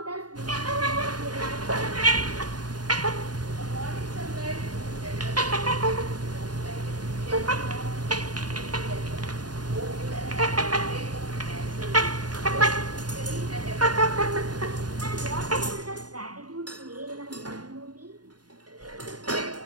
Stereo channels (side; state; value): left; late; 0.70 ms